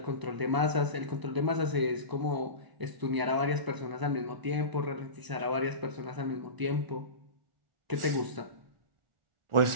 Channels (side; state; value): left; late; 1.0 ms